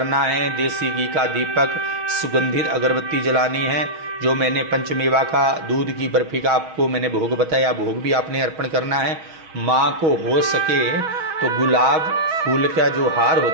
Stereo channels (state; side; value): late; left; 6.3 ms